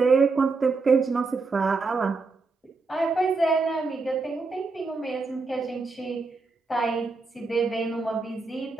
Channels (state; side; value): quieter; left; 4.0 dB